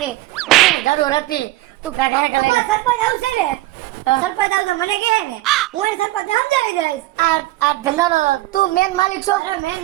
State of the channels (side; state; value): left; quieter; 17.7 dB